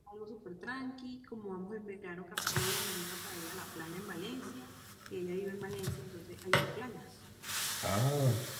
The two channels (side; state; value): both; identical; correlation 1.00